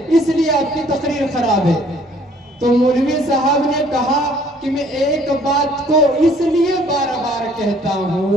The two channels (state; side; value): normal; both; correlation 0.59